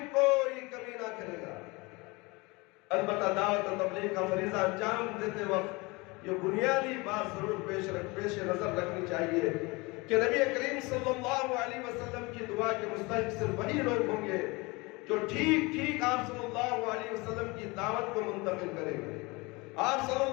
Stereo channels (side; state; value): right; quieter; 25.2 dB